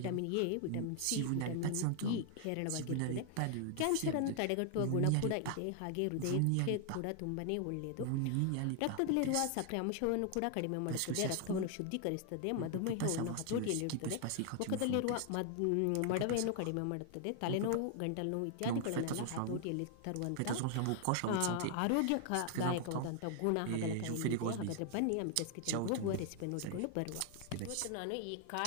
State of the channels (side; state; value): both; different; correlation 0.00